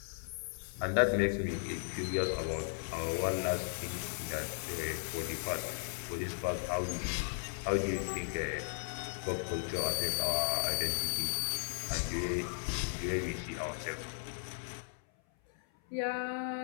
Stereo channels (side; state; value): right; silent; 54 dB below the other